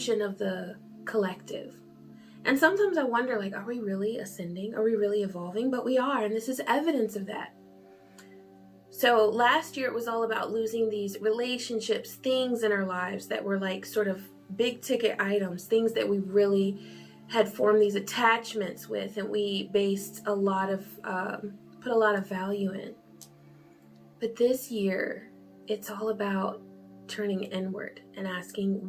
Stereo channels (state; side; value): identical; both; correlation 1.00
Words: of the collective. And sometimes I wonder, like, are we really ascending? Are we really evolving? But we are, and this is evidence of that. So last year it was all about losing these relationships, things in our lives that were like sort of big ticket items, things that we really had formed these attachments with, and we based a lot of, put a lot of value in. But this year, it's all about turning inward and asking,